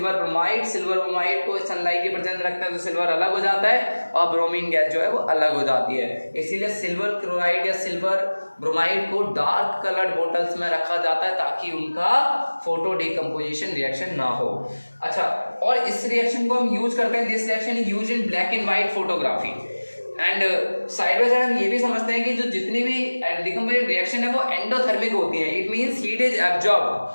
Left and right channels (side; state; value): both; inverted; correlation -1.00